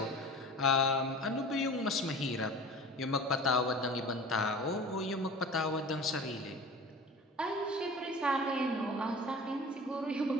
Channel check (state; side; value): normal; both; correlation 0.39